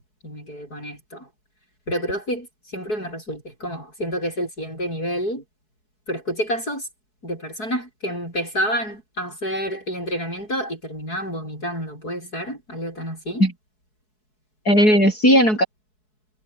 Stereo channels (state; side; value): late; right; 4.7 ms